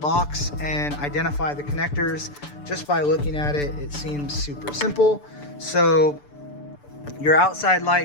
and identify the connectors. Just by looking at it, it seems super simple. So your outside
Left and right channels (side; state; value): right; late; 6.8 ms